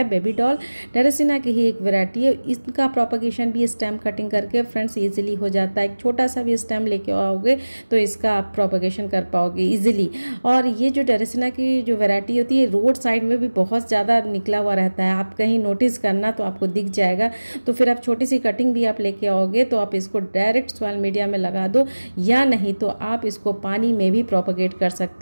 बेबी डॉल। ड्रेसिना की ही एक वैरायटी है। इसका प्रोपगेशन भी स्टेम कटिंग करके फ्रेंड्स ईजिली हो जाता है। एक छोटा सा भी स्टेम लेके आओगे तो इसका आप प्रोपगेशन कर पाओगे ईजिली। और ये जो ड्रेसिना की जो वैरायटी होती है रोड साइड में भी बहुत ज़्यादा निकला हुआ रहता है। आप कहीं नोटिस करना तो आपको दिख जाएगा। तो फिर आप छोटी सी कटिंग भी आप लेके आओगे तो आप इसको डायरेक्ट सॉइल मीडिया में लगा दो, या नहीं तो आप इसको पानी में भी प्रोपगेट कर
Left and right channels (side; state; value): both; inverted; correlation -1.00